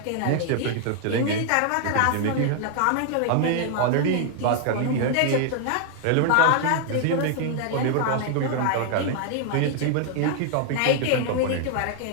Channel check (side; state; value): both; different; correlation 0.00